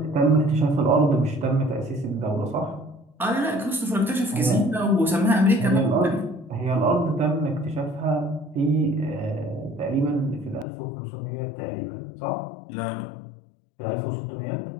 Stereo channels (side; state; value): right; drops out; at 10.7 s